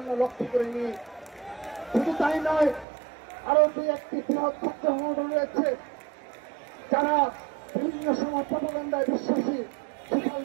লক্ষ্য করিনি। শুধু তাই নয়, আরো দুই একটি বৃহৎ ছাত্র সংগঠন রয়েছে যারা বিভিন্ন সময় প্রপাগান্ডায় বিশ্বাসী, সোশ্যাল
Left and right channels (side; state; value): left; drops out; at 2.9 s